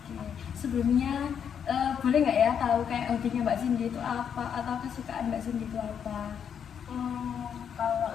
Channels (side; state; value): right; quieter; 7.9 dB